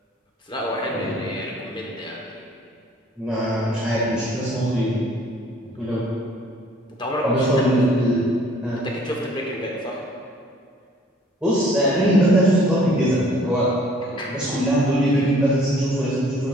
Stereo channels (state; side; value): normal; both; correlation 0.57